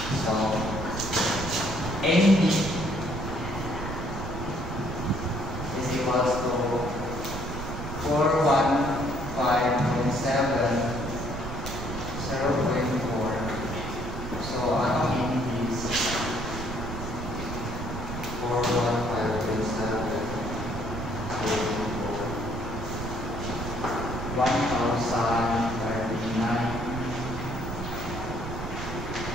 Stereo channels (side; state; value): right; noise; rumble, 6 dB below the sound